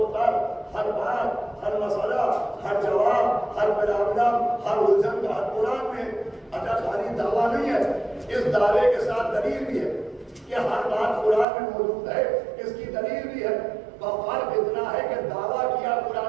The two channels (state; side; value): drops out; left; at 11.5 s